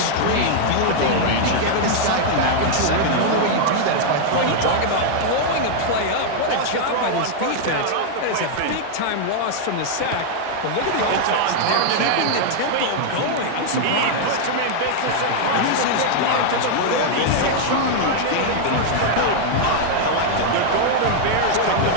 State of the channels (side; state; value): both; different; correlation 0.00